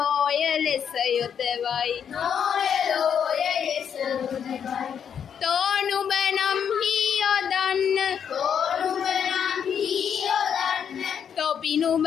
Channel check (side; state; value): right; quieter; 8.0 dB